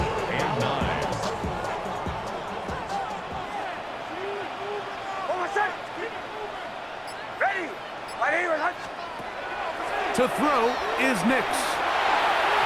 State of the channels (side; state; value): both; identical; correlation 1.00